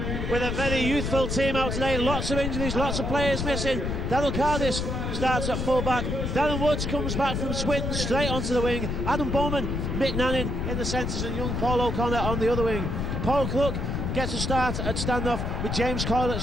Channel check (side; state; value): left; noise; rumble, 2 dB below the sound